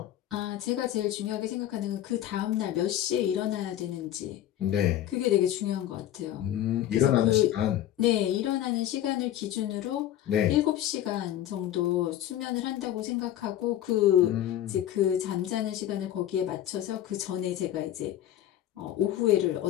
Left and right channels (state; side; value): quieter; right; 12.1 dB